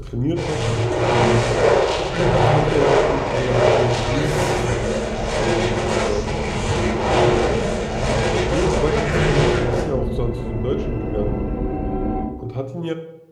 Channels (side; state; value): both; identical; correlation 1.00